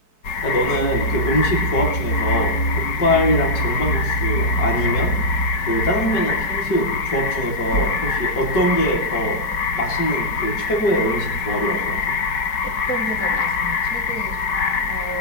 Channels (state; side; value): late; right; 4.6 ms